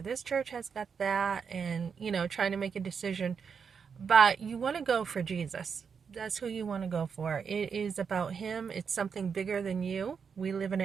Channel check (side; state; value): left; quieter; 6.3 dB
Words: this church has got that, and trying to make a decision. But you want to go for Jesus. That's who you want to go for. It is about him. It's something bigger than you. We live in